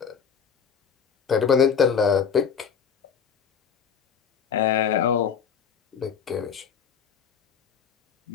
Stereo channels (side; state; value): right; quieter; 7.2 dB